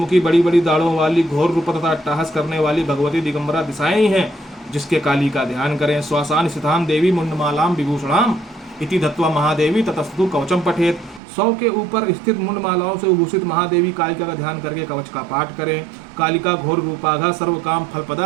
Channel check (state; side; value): drops out; left; at 11.2 s